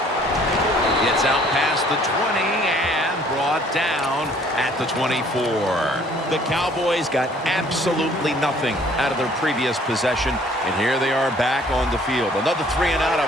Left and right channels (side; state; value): both; normal; correlation 0.58